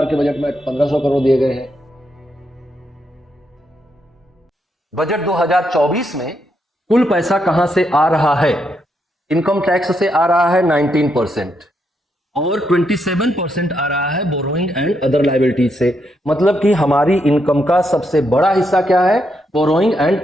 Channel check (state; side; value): normal; both; correlation 0.79